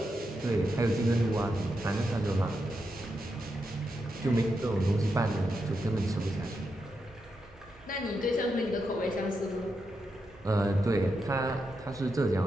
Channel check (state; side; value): noise; right; hum, 25 dB below the sound